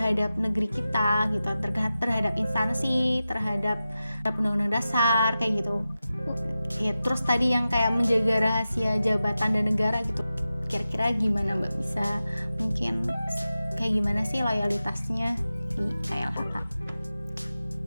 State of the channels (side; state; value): both; inverted; correlation -0.93